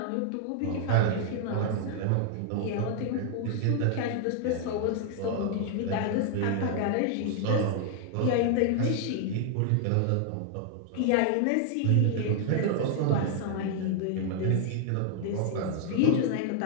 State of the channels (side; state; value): both; different; correlation 0.00